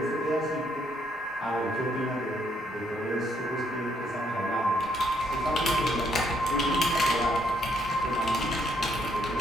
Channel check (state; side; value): normal; both; correlation 0.71